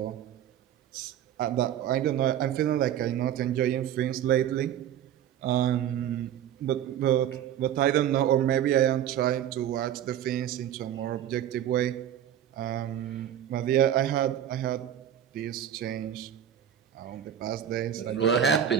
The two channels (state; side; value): quieter; left; 10.4 dB